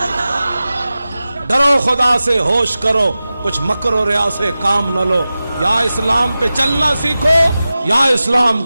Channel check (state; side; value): inverted; both; correlation -0.95